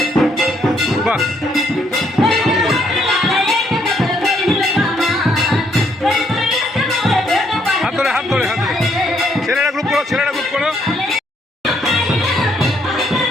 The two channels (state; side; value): normal; both; correlation 0.71